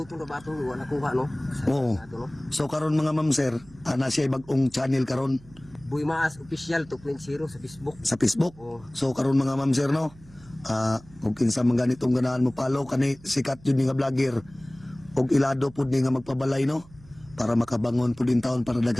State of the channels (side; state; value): right; noise; hum, 23 dB below the sound